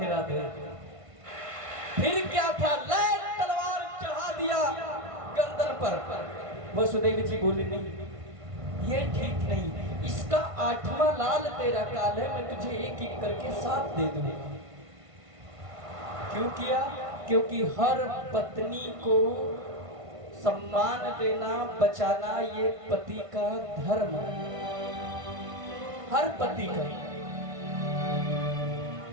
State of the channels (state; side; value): late; left; 1.5 ms